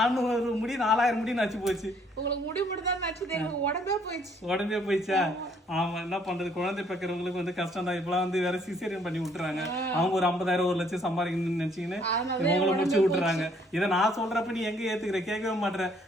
முடி 4000 முடி நச்சு போச்சு. உங்களுக்கு முடி மட்டும் தான் நச்சுது, எனக்கு உடம்பே போயிடுச்சா? ஆமா, என்ன பண்றது, குழந்தை பெக்கிறவங்களுக்கு வந்து கஷ்டம் தான். இப்பெல்லாம் வந்து வேற சிசேரியன் பண்ணி விட்டுறாங்க. அவங்க ஒரு 50,000 1 லட்சம் சம்பாதிக்கணும்னு நினைச்சீங்கன்னு உங்களை முடிச்சு விட்டுறாங்க. இதை நான் சொல்றப்ப நீ எங்க ஏத்துக்கிற, கேட்கவே மாட்டேற.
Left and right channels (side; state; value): both; normal; correlation 0.64